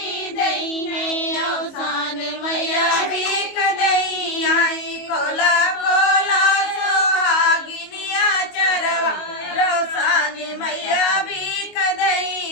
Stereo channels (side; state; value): right; late; 22 ms